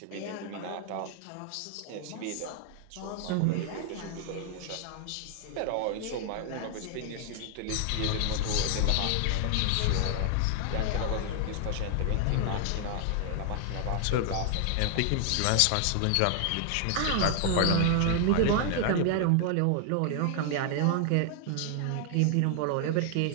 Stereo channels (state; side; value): different; both; correlation 0.00